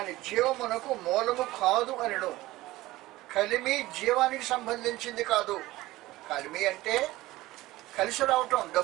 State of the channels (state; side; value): quieter; left; 17.9 dB